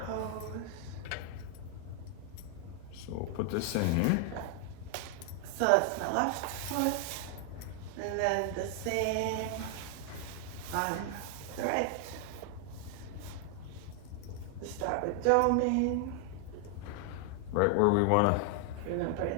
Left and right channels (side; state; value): both; different; correlation 0.00